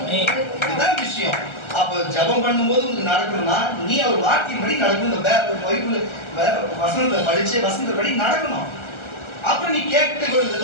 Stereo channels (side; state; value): right; late; 1.4 ms